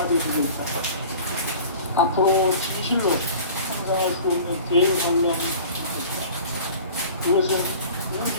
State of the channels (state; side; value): inverted; both; correlation -0.43